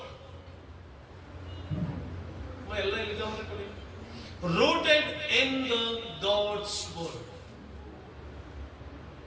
ಎಲ್ಲ ಎಲ್ಲಿದೆ ಕೊಡಿ. Rooted in the God's word.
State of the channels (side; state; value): both; identical; correlation 1.00